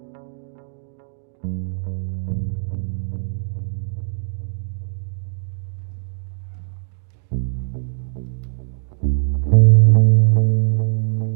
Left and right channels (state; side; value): silent; left; digital silence